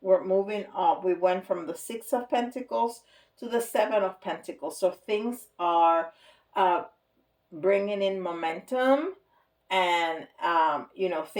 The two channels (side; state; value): both; identical; correlation 1.00